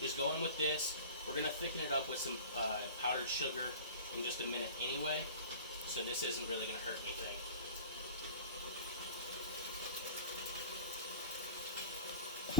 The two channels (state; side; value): inverted; both; correlation -0.37